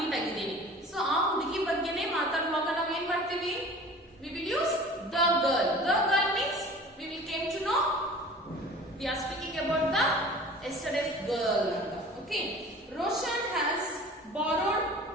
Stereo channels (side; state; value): both; normal; correlation 0.43